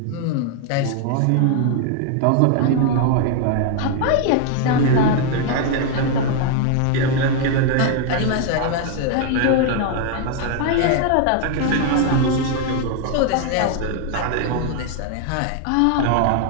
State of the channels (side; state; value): both; different; correlation 0.00